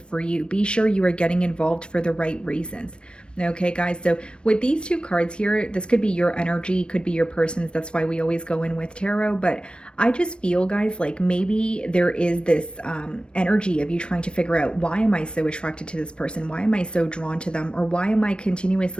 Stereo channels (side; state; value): right; late; 0.056 ms